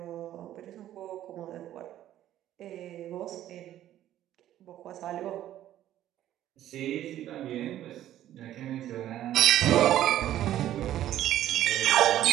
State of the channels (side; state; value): left; quieter; 12.5 dB